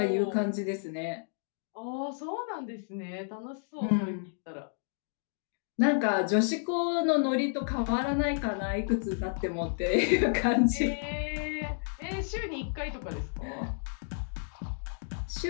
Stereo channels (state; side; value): silent; right; digital silence